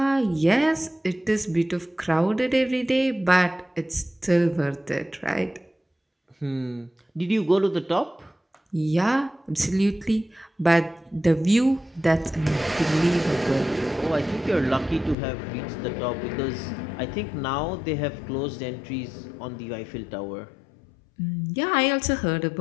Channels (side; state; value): right; drops out; at 15.2 s